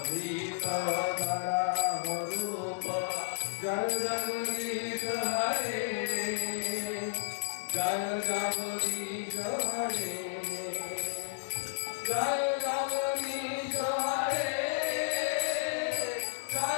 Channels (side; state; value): right; silent; digital silence